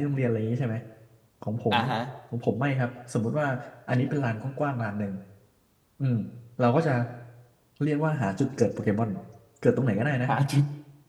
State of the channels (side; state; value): both; identical; correlation 1.00